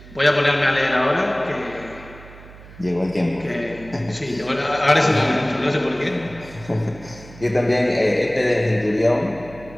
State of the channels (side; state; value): right; noise; hum, 19 dB below the sound